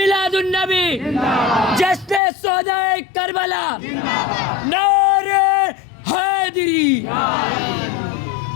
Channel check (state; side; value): drops out; right; at 2.2 s